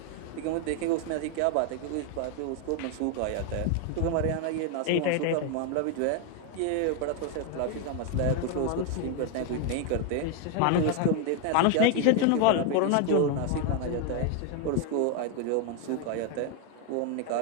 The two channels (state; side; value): different; both; correlation 0.01